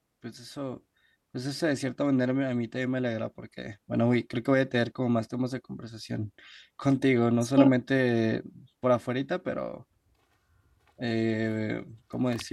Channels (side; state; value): both; identical; correlation 1.00